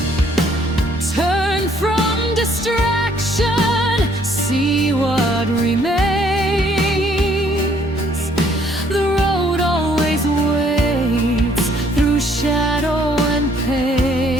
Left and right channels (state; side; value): normal; both; correlation 0.64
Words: Turn from distraction, see what remains. The road always waits through shadow and pain.